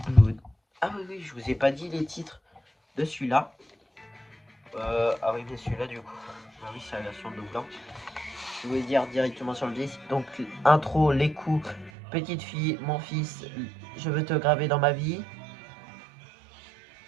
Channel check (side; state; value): left; drops out; at 11.9 s